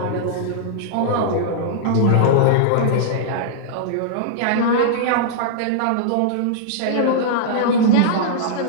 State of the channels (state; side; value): different; both; correlation -0.02